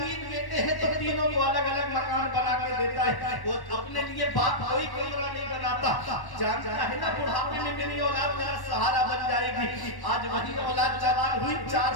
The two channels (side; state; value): right; late; 1.1 ms